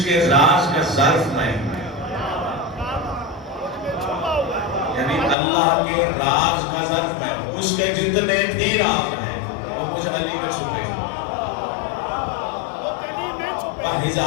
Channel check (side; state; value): right; drops out; at 5.4 s